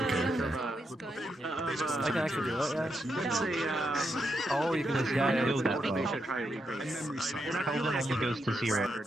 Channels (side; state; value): both; normal; correlation 0.82